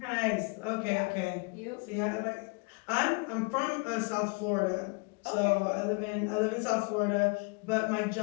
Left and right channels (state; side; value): quieter; right; 31.2 dB